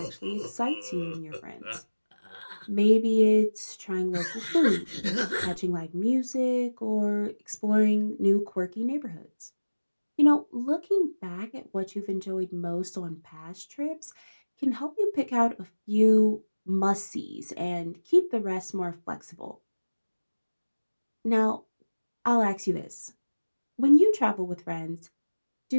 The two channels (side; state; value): both; inverted; correlation -1.00